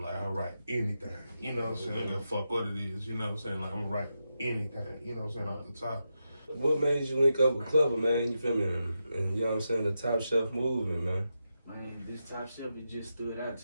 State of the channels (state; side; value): inverted; both; correlation -0.87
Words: Like I write anything. You know what I'm saying? I don't give a fuck what it is. You know what I'm saying? Like I'm gonna write anything. You know what I'm saying? Off the top. What made you link up with Clever, man? You feel me? And you know what I'm saying? The Top Shelf movement, man. Man, this Top Shelf, it just stood out